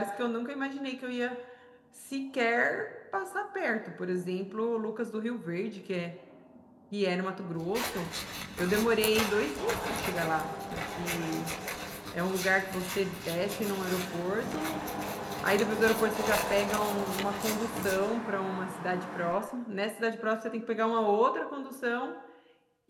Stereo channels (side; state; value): both; identical; correlation 1.00